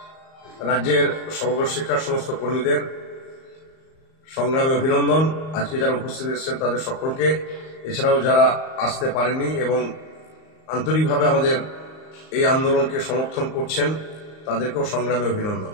রাজ্যের সমগ্র শিক্ষার সমস্ত কর্মীদের সংগ্রামে অভিনন্দন। আজকে যারা উপস্থিত এসেছেন তাদের সকলকে, এছাড়াও যারা আসতে পারেননি এবং আন্তরিকভাবে আমাদের এই আন্দোলনকে সমর্থন করছেন তাদেরকেও সংগ্রামে অভিনন্দন।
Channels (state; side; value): late; right; 38 ms